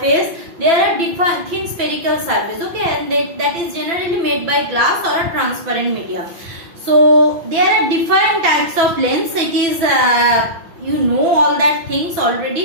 There are different thin spherical surface, okay, and that is generally made by glass or a transparent medium. So there are different types of lens. It is you know all that things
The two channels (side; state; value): left; late; 6.0 ms